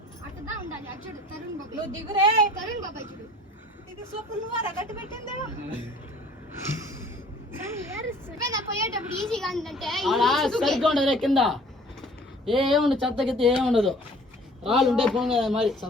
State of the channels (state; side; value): normal; both; correlation 0.51